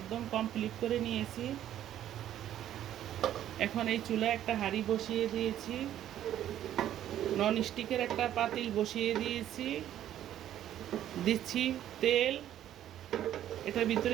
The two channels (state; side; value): quieter; left; 11.6 dB